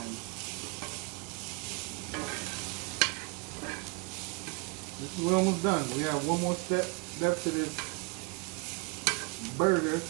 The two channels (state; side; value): quieter; left; 30.5 dB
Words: We're almost done. We have one more step to this burger.